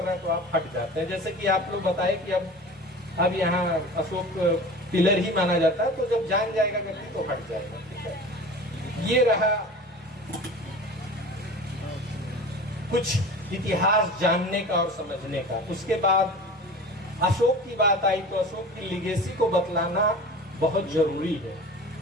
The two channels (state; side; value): normal; both; correlation 0.37